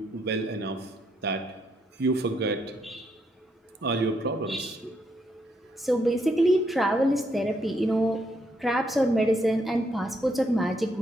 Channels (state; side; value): normal; both; correlation 0.76